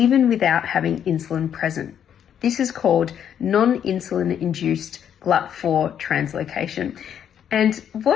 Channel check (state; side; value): quieter; right; 9.0 dB